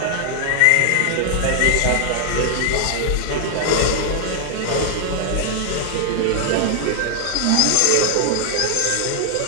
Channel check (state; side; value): different; both; correlation 0.00